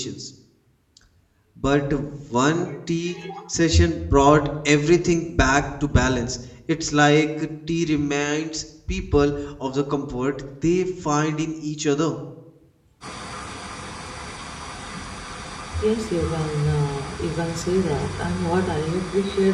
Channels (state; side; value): identical; both; correlation 1.00